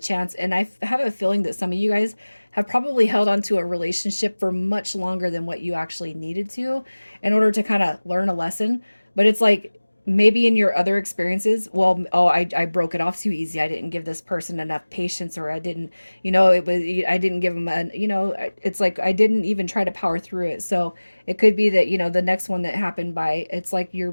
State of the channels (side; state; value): both; inverted; correlation -1.00